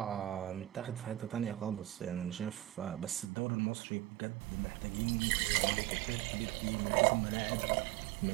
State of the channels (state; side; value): drops out; left; at 3.3 s